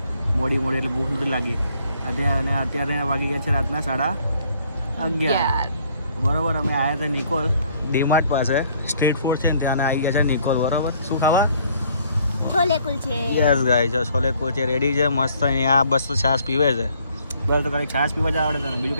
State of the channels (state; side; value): inverted; both; correlation -0.63